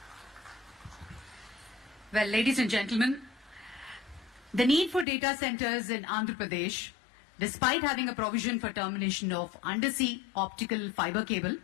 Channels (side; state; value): right; drops out; at 5.1 s